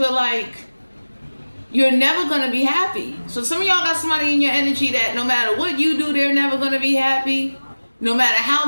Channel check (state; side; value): inverted; both; correlation -1.00